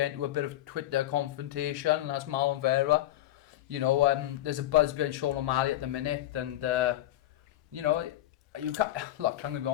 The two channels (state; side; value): quieter; right; 14.3 dB